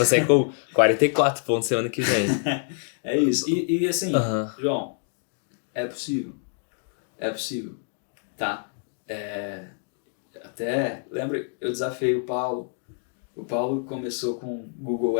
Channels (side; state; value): right; silent; 59 dB below the other